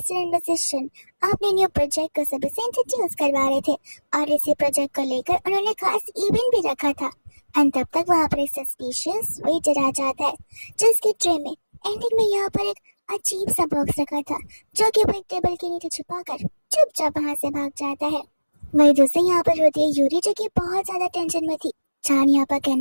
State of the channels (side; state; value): both; inverted; correlation -1.00